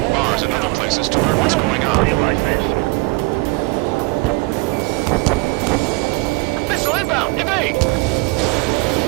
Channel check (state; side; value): quieter; left; 26.0 dB